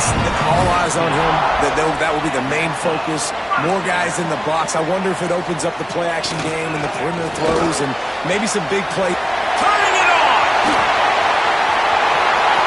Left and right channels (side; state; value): both; identical; correlation 1.00